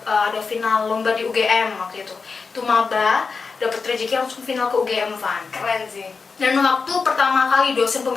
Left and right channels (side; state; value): right; quieter; 4.8 dB